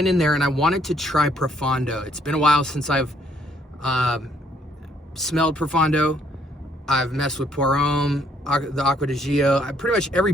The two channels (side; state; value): both; normal; correlation 0.67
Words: in there and I wanted to try Profondo. It's been a while since I've smelled Profondo. I've messed with Pour Homme, the Acqua di Gio. Pretty much every